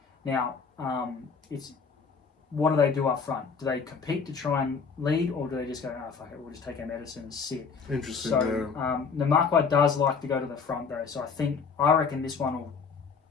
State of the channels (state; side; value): quieter; right; 5.5 dB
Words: Now, what do they do up front? Do they compete to try and lead, or do they just go, fuck it, we'll just take our medicine and sit? Interesting, So, the Marquis does like to go to the front, though, so I reckon this one will